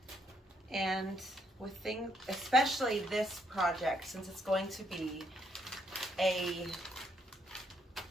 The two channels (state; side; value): normal; both; correlation 0.73